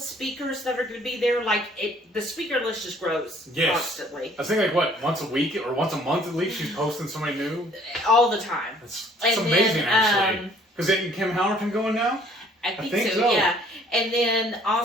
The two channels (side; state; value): both; normal; correlation 0.58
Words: that are going to be there. The speaker list just grows constantly. I think once a week or once a month at least she's posting somebody new. All the time. It's amazing actually. Because isn't Kim Howerton going now? I think so, yeah. And then